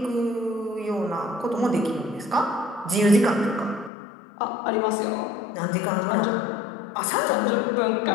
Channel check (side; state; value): right; drops out; at 3.9 s